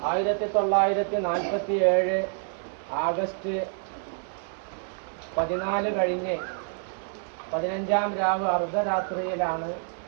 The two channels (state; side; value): silent; left; 60 dB below the other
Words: 1947 ആഗസ്റ്റ് 14 കഴിഞ്ഞ് 15-ാം രാവ് അർദ്ധരാത്രിയിലാണ്